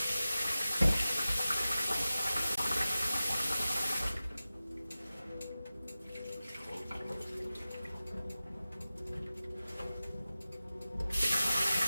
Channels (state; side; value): inverted; both; correlation -0.95